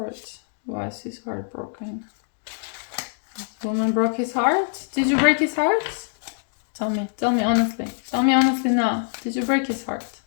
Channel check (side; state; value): right; silent; digital silence